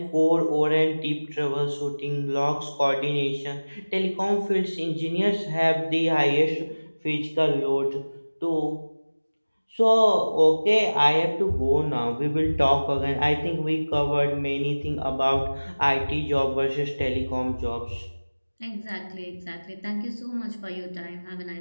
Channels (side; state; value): both; inverted; correlation -1.00